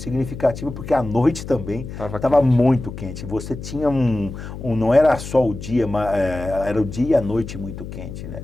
porque à noite também estava muito quente. Você tinha não era só o dia, mas era o dia e a noite muito quente, né?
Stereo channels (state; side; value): noise; left; hum, 10 dB below the sound